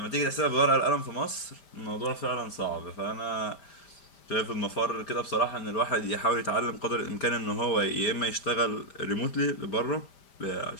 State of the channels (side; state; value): right; late; 5.0 ms